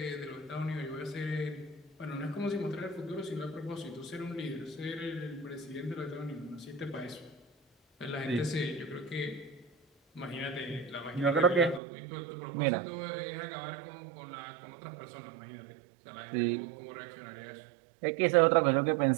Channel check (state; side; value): drops out; left; at 11.8 s